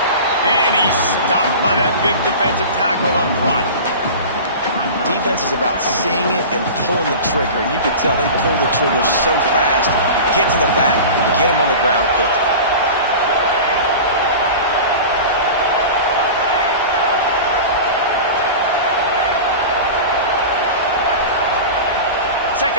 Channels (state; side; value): inverted; both; correlation -0.33